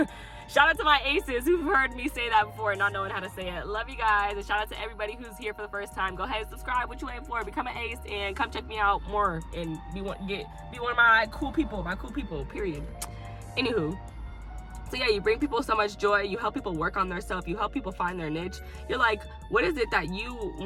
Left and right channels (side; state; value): both; identical; correlation 1.00